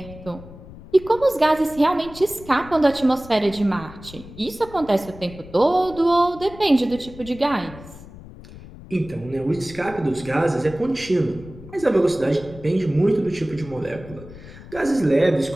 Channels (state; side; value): noise; left; rumble, 17 dB below the sound